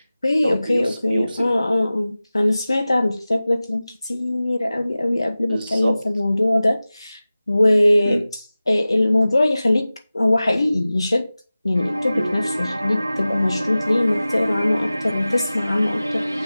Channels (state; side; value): inverted; both; correlation -0.96